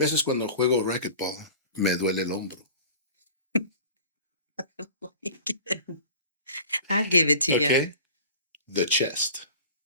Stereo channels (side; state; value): both; inverted; correlation -0.41